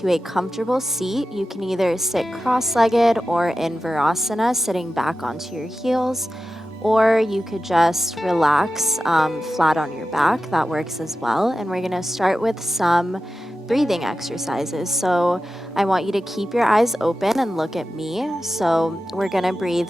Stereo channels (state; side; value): normal; both; correlation 0.93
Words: a comfortable seat. You can either sit cross-legged or in Virasana, sitting back onto your heels, or you could just relax flat on your back. That works as well. And we're going to start with some breathing exercises. So I want you to keep your eyes open and look at me. So we're going to breathe